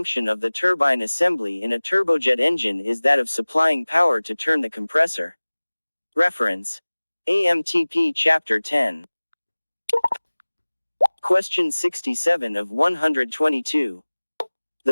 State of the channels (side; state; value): both; inverted; correlation -1.00